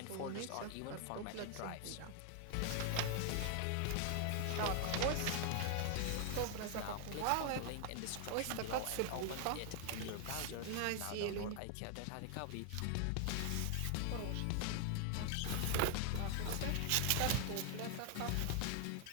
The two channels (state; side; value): different; both; correlation 0.00